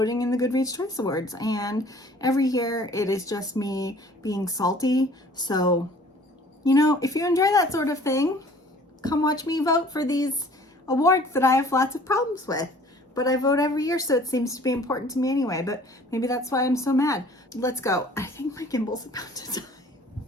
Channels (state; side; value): normal; both; correlation 0.52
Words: in the Goodreads Choice Awards. And every year it is just me being salty. So, you know, if you enjoy that sort of thing, come watch me vote for these awards that I have lots of problems with. But I vote every year, so it seems to be important to me anyway. But maybe that's why I'm so mad. Let's go. I think my gimbal's about to die.